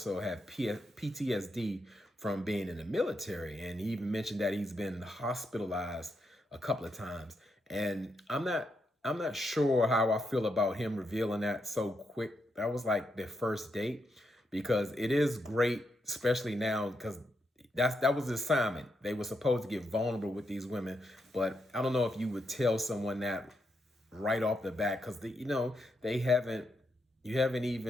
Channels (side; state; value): both; normal; correlation 0.82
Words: have PTSD from being in the military. And he even mentioned that he's been hospitalized a couple of times. And I'm not sure how I feel about him revealing that so quick. That was like their first date, because it is great, especially now, because that was the assignment. They were supposed to get vulnerable with these women, but I don't know if you would tell someone that right off the bat, because you haven't